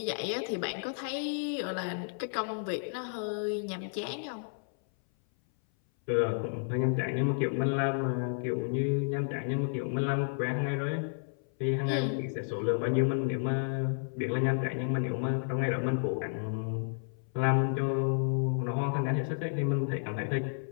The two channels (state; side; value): silent; right; 57 dB below the other